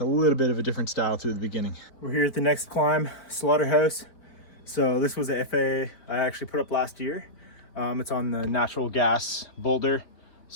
a little bit of a different style through the beginning. We're here at the next climb, Slaughterhouse. So this was an FA I actually put up last year. It's on the natural gas boulder,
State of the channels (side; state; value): right; late; 4.6 ms